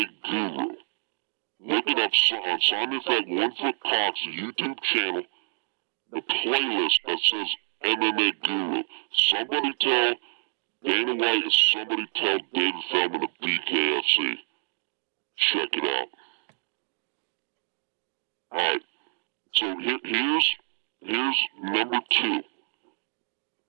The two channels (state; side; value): silent; left; digital silence